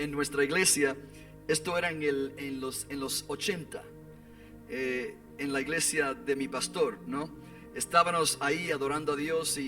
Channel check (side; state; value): both; identical; correlation 1.00